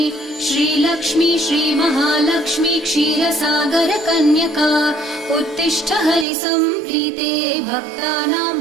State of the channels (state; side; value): drops out; left; at 6.2 s